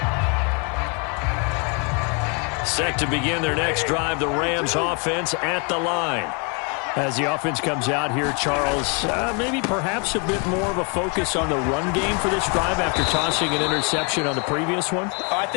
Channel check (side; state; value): right; quieter; 34.2 dB